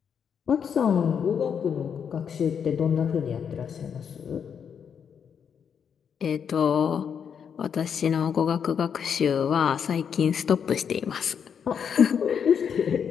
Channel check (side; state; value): right; quieter; 7.4 dB